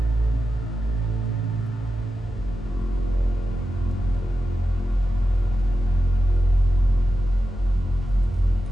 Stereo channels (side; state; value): both; normal; correlation 0.91